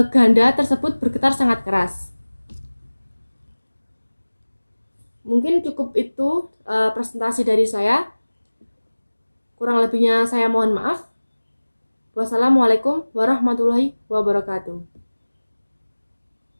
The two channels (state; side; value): inverted; both; correlation -1.00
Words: ganda tersebut bergetar sangat keras. Mungkin cukup itu presentasi dari saya. Kurang lebihnya saya mohon maaf. Wassalamualaikum warahmatullahi wabarakatuh.